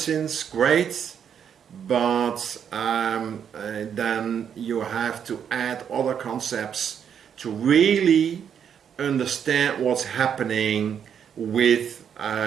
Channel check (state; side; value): quieter; left; 8.1 dB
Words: great, but then you have to add other concepts to really understand what's happening with